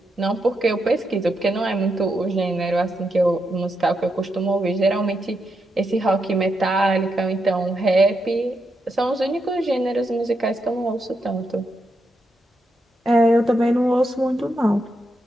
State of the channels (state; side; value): normal; both; correlation 0.83